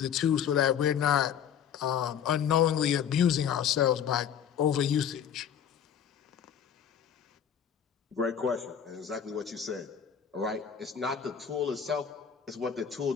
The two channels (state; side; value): quieter; right; 8.5 dB